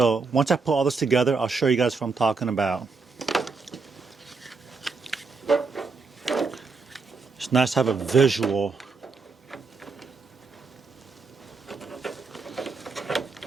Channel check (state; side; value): quieter; left; 4.4 dB